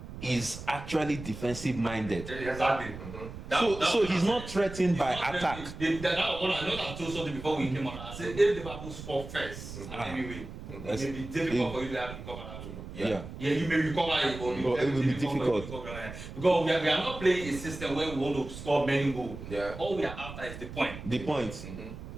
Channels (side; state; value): right; noise; rumble, 11 dB below the sound